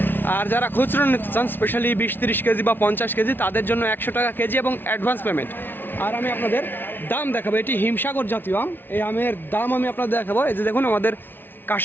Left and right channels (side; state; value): right; late; 0.099 ms